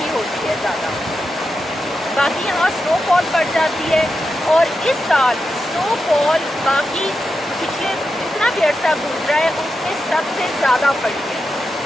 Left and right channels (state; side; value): normal; both; correlation 0.88